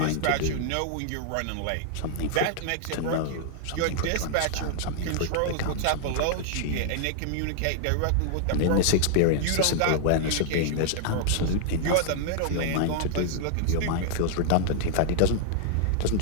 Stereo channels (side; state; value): both; different; correlation -0.01